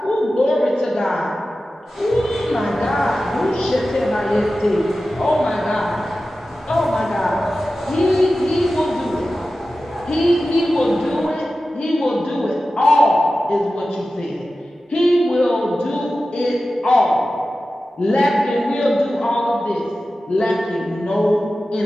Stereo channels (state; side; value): normal; both; correlation 0.94